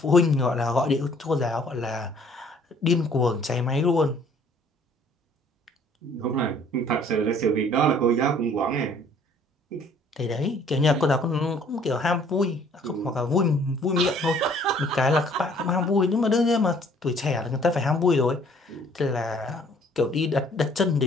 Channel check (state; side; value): normal; both; correlation 0.58